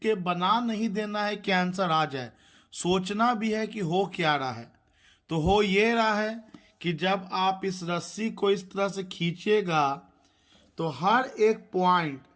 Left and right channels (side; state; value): both; identical; correlation 1.00